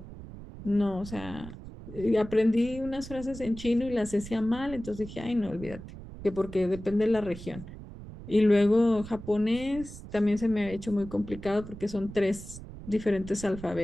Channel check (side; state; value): right; noise; rumble, 13 dB below the sound